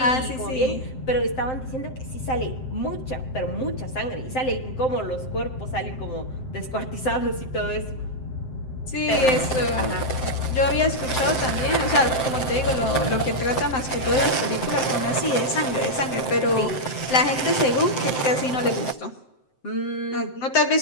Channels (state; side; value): late; right; 7.7 ms